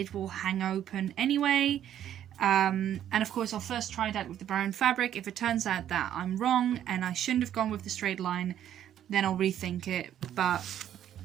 will hang open anyway. And of course, I'll first try that with the brown fabric. If it turns out that I'm wrong and I shouldn't have gone with the straight line, then I'll rethink it. But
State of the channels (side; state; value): left; quieter; 10.7 dB